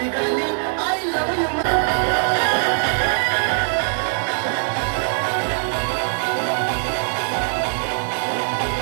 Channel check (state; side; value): silent; left; digital silence